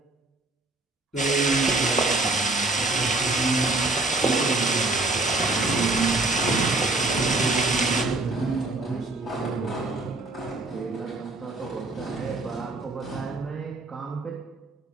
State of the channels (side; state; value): left; quieter; 3.0 dB